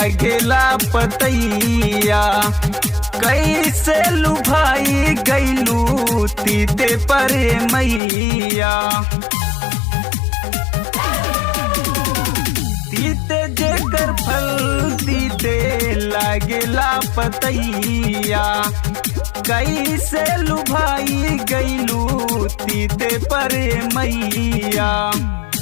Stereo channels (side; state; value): right; drops out; at 8.0 s